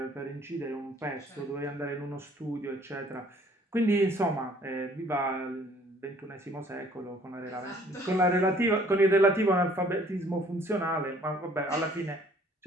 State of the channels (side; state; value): both; normal; correlation 0.58